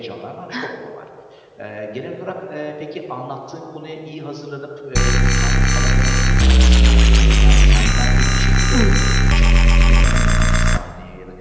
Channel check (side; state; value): both; identical; correlation 1.00